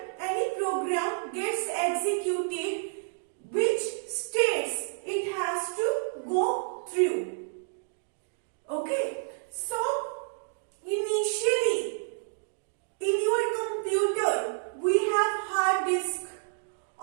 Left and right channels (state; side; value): silent; left; digital silence